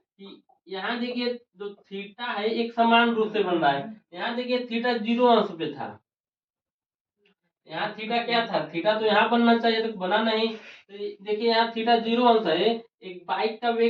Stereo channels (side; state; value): both; identical; correlation 1.00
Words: यहाँ देखिए जो थीटा है एक समान रूप से बन रहा है। यहाँ देखिए थीटा 0 अंश पे था, यहाँ थीटा क्या था, थीटा तो यहाँ बनना चाहिए तो बना नहीं। तो देखिए यहाँ थीटा 0 अंश है। एक बाइक का